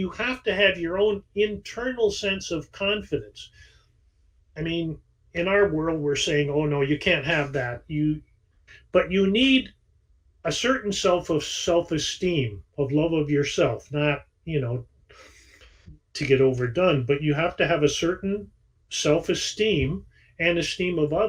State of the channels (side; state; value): both; identical; correlation 1.00